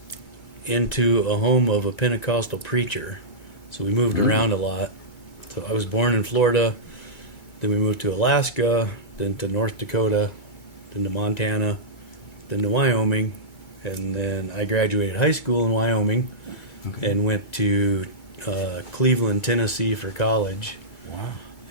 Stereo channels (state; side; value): late; right; 2.2 ms